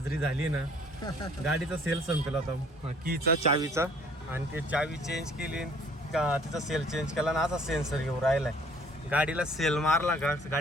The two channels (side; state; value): both; normal; correlation 0.57